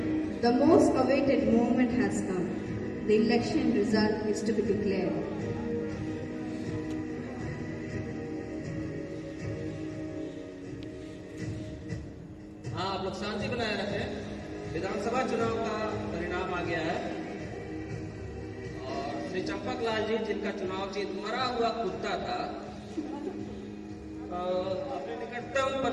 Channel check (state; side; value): identical; both; correlation 1.00